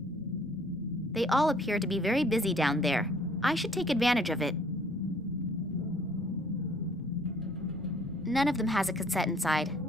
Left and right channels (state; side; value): normal; both; correlation 0.59